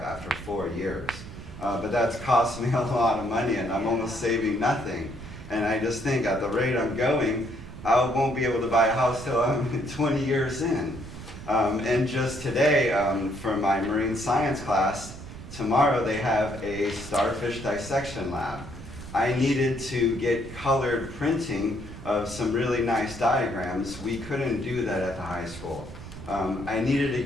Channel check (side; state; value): right; noise; rumble, 13 dB below the sound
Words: after 4 years. But that's cost me a lot of money, and I'm almost saving nothing. And I just think at the rate I'm going, I won't be able to buy a house till I'm 20 years in. And just today, for my marine science class, tomorrow they have a starfish dissection lab. I needed to get colored printing of some really nice diagrams. We couldn't do that at the high school. I needed to